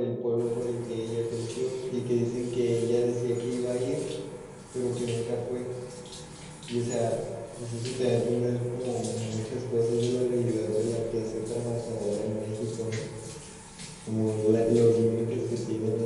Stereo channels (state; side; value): identical; both; correlation 1.00